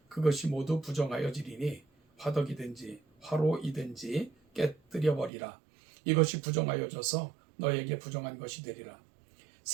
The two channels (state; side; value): drops out; left; at 5.3 s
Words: 그것이 모두 부정하여지리니 화덕이든지 화로이든지 깨뜨려 버리라. 이것이 부정하여져서 너에게 부정한 것이 되리라.